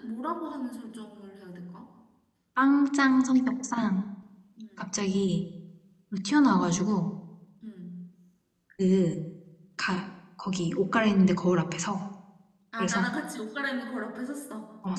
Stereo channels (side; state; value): both; identical; correlation 1.00